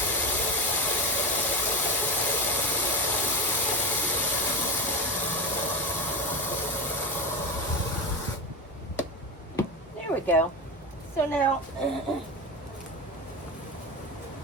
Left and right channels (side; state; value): both; normal; correlation 0.21